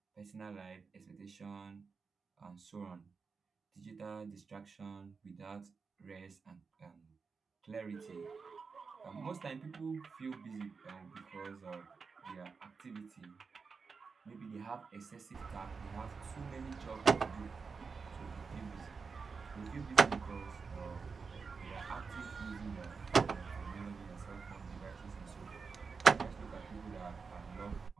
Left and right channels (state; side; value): quieter; left; 5.1 dB